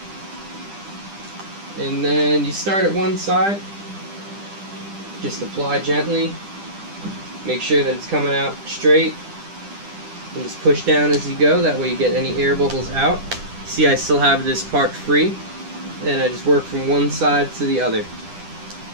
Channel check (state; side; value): late; left; 10 ms